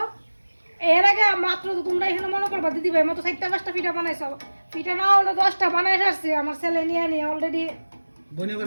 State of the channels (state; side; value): inverted; both; correlation -1.00